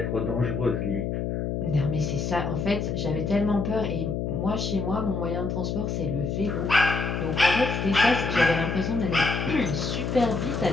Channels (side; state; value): left; noise; hum, 2 dB below the sound